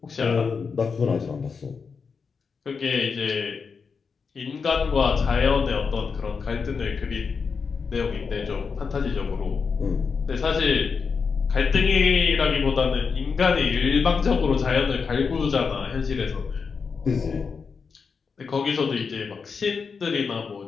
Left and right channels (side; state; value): right; quieter; 5.4 dB